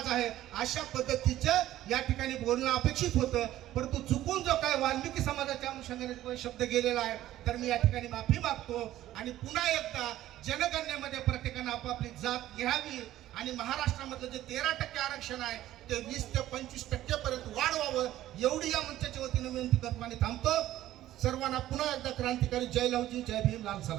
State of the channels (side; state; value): left; quieter; 13.9 dB